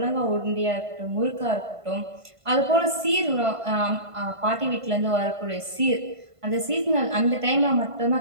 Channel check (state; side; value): late; left; 1.5 ms